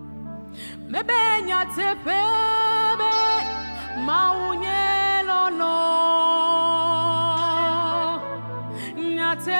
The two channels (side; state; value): both; inverted; correlation -1.00